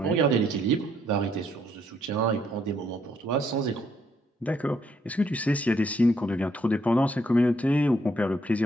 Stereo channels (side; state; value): both; normal; correlation 0.71